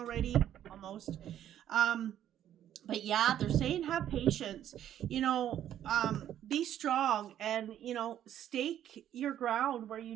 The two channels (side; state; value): left; quieter; 11.0 dB